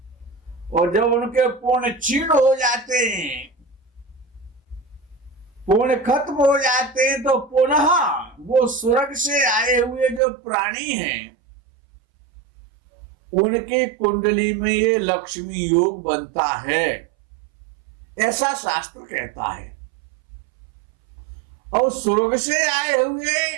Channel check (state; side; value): drops out; left; at 10.2 s